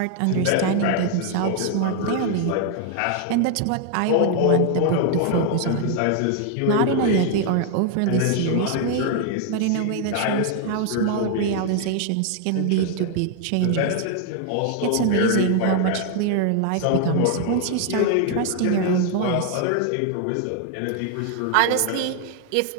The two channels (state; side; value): different; both; correlation 0.00